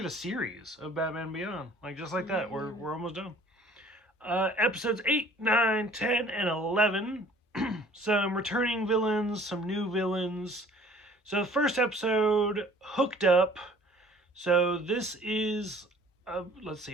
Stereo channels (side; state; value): both; normal; correlation 0.53